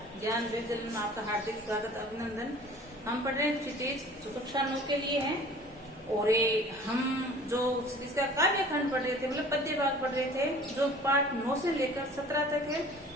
ज्ञान विद्यालय में आपका हार्दिक स्वागत अभिनंदन। हम पढ़ रहे हैं क्षितिज जो कक्षा 9 के लिए है और हम जो क्षितिज का काव्य खंड पढ़ रहे थे, मतलब पद्य भाग पढ़ रहे थे जो पाठ 9 से लेकर 17 तक है।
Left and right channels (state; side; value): normal; both; correlation 0.47